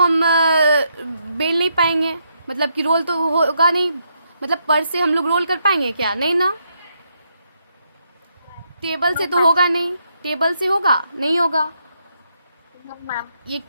बेल नहीं पाएंगे, मतलब कि रोल तो होगा नहीं, मतलब पर से हम लोग रोल कर पाएंगे क्या, नहीं ना। टेबल से तो होगा नहीं, टेबल से होगा नहीं होगा। ये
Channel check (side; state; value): both; inverted; correlation -0.77